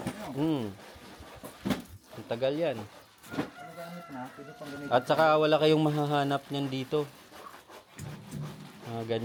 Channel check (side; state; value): both; identical; correlation 1.00